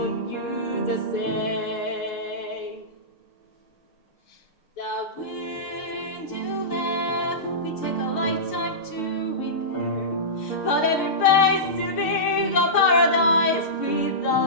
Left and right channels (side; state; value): right; late; 6.6 ms